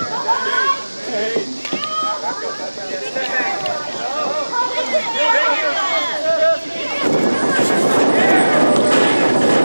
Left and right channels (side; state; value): both; inverted; correlation -1.00